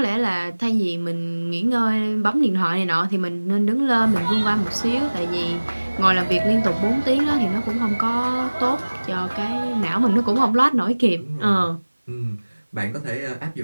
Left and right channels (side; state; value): both; inverted; correlation -1.00